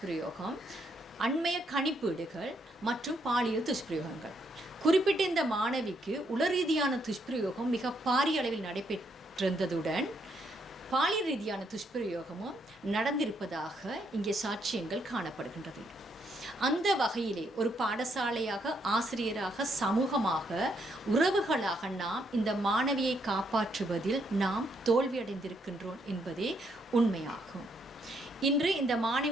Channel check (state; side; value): normal; both; correlation 0.74